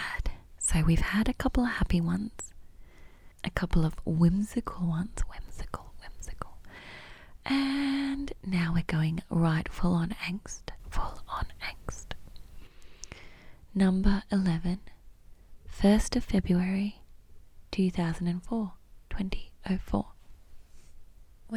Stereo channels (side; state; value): both; identical; correlation 1.00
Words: So we've had a couple of happy ones, a couple of whimsical ones, whimsical. And now we're going right full on angst. Number 11, 1st of February 2004.